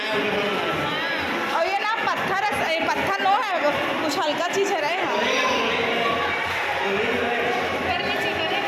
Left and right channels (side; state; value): both; identical; correlation 1.00